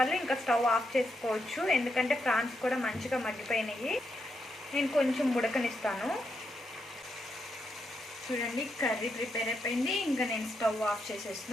ఇంకా స్టవ్ ఆఫ్ చేసుకోవచ్చు, ఎందుకంటే ఫ్రాన్స్ కూడా మంచిగా మగ్గిపోయినాయి. నేను కొంచెం ఉడకనిస్తాను. చూడండి, కర్రీ ప్రిపేర్ అయిపోయింది. ఇంకా నేను స్టవ్ ఆఫ్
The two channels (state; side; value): normal; both; correlation 0.82